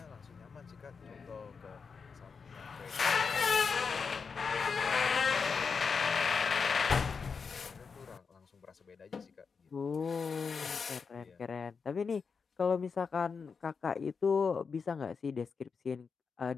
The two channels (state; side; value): quieter; right; 5.5 dB